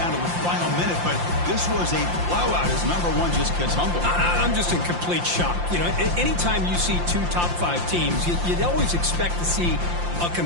to the final minute, but this was a blowout as number 1 just gets humbled. I'm just in complete shock. You know, anytime you see 2 top 5 teams, you'd always expect to see a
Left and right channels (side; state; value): left; late; 5.7 ms